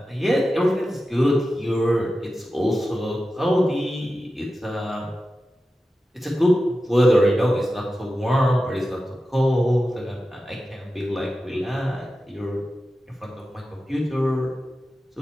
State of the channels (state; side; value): normal; both; correlation 0.92